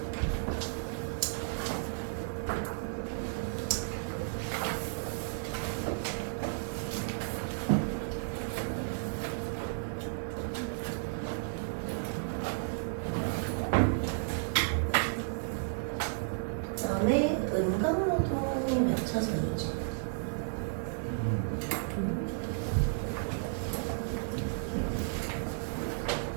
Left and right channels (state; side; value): silent; left; digital silence